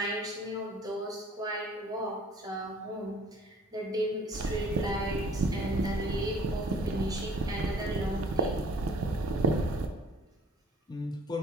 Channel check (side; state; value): both; normal; correlation 0.53